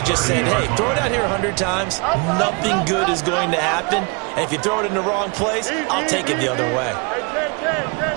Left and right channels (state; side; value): quieter; left; 32.0 dB